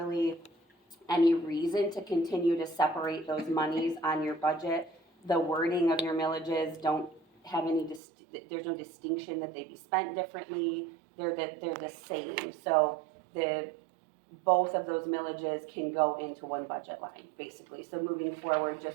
any reason to continue to separate those monies on your budget. The wording of your millages don't have any, there's no distinction that they be spent differently. They're the same. So both of those millages can go into one budget line, basically. So moving forward,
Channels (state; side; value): drops out; left; at 8.0 s